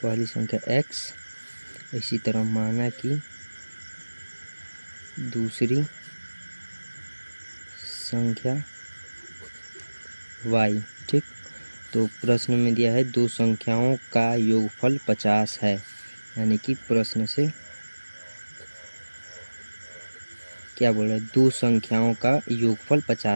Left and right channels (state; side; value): inverted; both; correlation -1.00